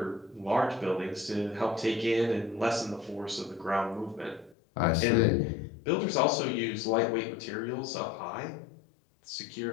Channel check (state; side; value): drops out; right; at 4.5 s